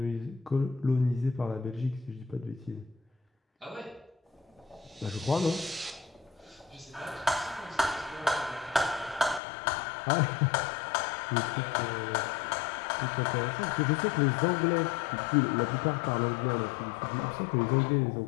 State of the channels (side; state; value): right; drops out; at 9.4 s